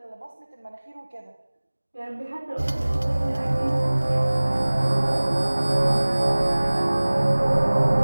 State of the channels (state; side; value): inverted; both; correlation -1.00